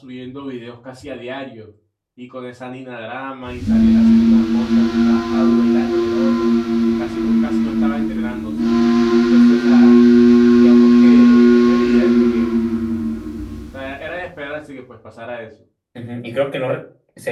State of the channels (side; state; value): both; identical; correlation 1.00